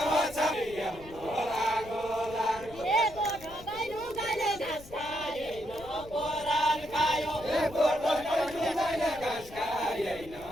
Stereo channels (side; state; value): left; noise; rumble, 18 dB below the sound